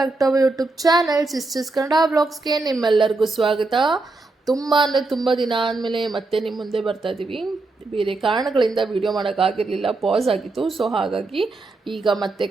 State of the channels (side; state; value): left; quieter; 3.4 dB